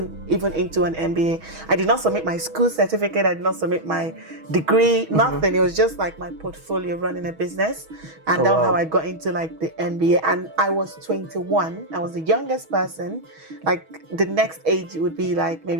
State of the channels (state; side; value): late; left; 6.3 ms